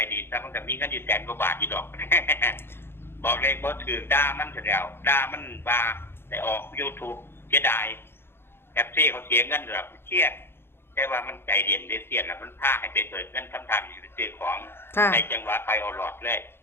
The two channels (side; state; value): right; late; 0.11 ms